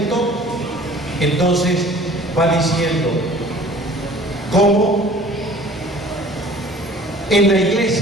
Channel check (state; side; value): normal; both; correlation 0.48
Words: Entonces va diciendo, ¿cómo? En la